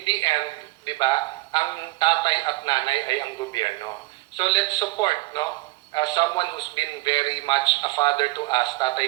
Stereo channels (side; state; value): left; quieter; 20.9 dB